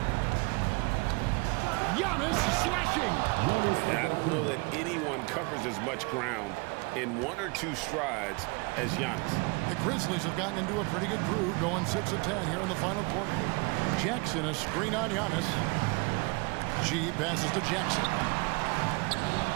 Giannis slashing. I don't know that anyone covers as much ground in 1 or 2 strides as Giannis. The Grizzlies have gotten into a pretty good groove, going 6 of 10 here in the final quarter. Jackson, a screen on Giannis. G passes to Jackson.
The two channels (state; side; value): quieter; left; 28.6 dB